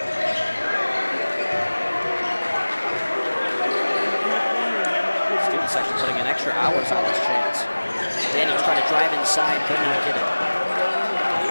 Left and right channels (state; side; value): inverted; both; correlation -1.00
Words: Student section putting in extra hours on this chance. Daniels trying to drive inside, could not get it.